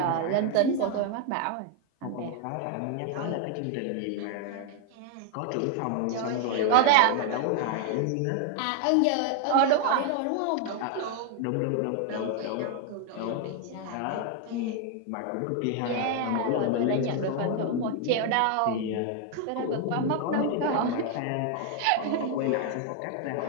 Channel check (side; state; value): both; different; correlation 0.01